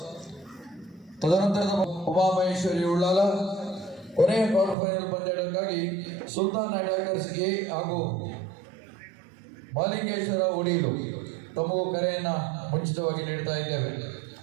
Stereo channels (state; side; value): drops out; left; at 4.8 s